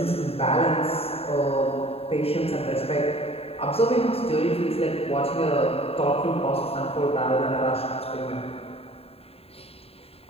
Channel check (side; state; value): right; late; 0.28 ms